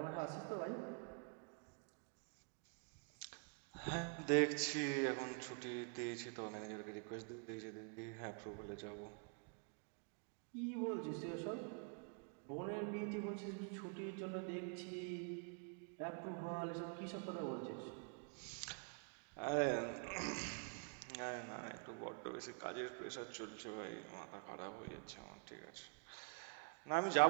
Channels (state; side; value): quieter; left; 35.1 dB